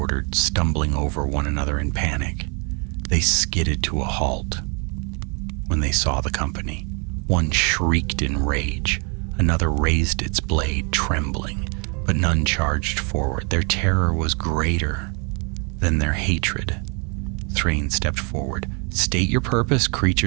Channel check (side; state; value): left; quieter; 34.7 dB